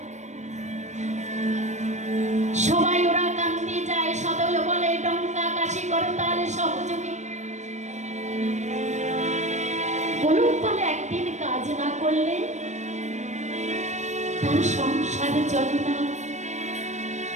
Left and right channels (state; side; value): late; left; 0.34 ms